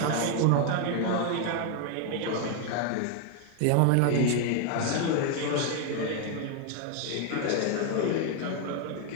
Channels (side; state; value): both; different; correlation 0.01